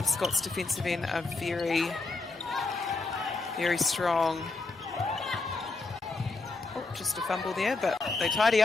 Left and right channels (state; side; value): quieter; right; 3.6 dB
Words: Scots defensive end are very, very strong. Oh, just a fumble there, but they tidy